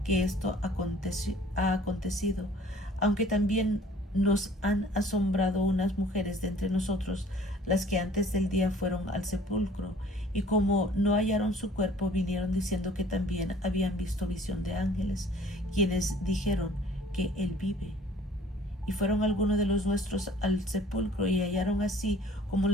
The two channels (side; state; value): both; normal; correlation 0.52